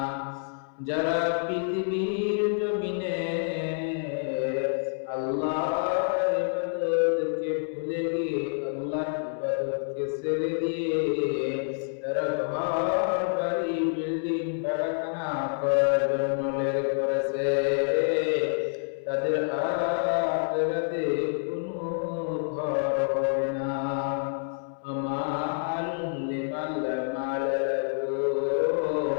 যারা পৃথিবীর জমিনে আল্লাহর ইবাদতকে ভুলে গিয়ে আল্লাহর ইবাদতকে ছেড়ে দিয়ে তারা ঘর বাড়ি বিল্ডিং কারখানা করার জন্য লেগে পড়েছে তাদের আখিরাতে কোনো ঘর হবে না। আমালুন লিমান লা মাল লাহু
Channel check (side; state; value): right; silent; 59 dB below the other